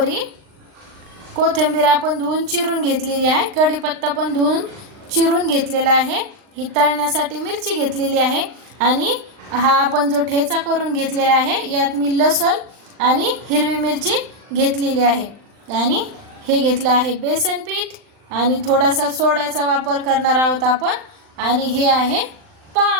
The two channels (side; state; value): left; late; 40 ms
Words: कोथिंबीर आपण धुवून चिरून घेतलेली आहे, कढीपत्ता पण धुवून चिरून घेतलेला आहे, ही तळण्यासाठी मिरची घेतलेली आहे आणि हा आपण जो ठेचा करून घेतलेला आहे यात मी लसूण आणि हिरवी मिरची घेतलेली आहे आणि हे घेतलं आहे बेसन पीठ आणि थोडासा सोड्याचा वापर करणार आहोत आपण आणि हे आहे